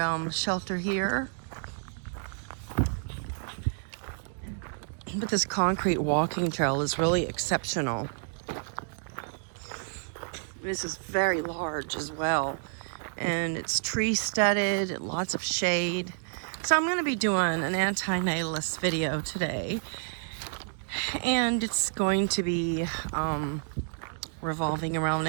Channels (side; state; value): left; silent; digital silence